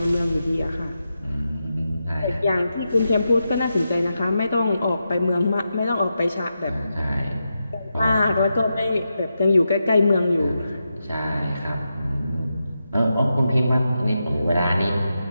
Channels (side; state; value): both; inverted; correlation -0.88